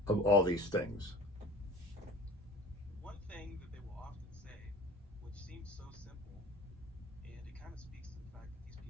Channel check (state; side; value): normal; both; correlation 0.41